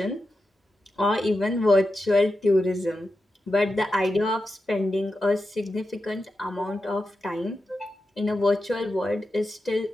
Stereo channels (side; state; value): both; normal; correlation 0.90